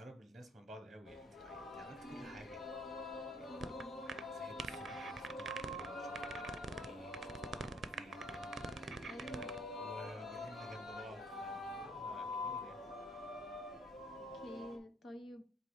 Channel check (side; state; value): both; normal; correlation 0.60